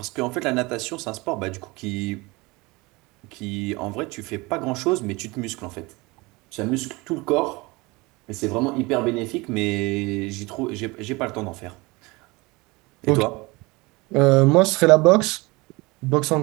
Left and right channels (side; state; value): left; quieter; 24.0 dB